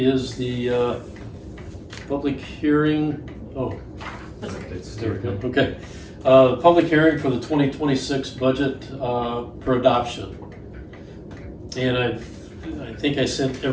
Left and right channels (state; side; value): identical; both; correlation 1.00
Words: the public hearing. Oh, It's there we go. Okay. Public hearing for the 2026 budget for adoption. And I think I sent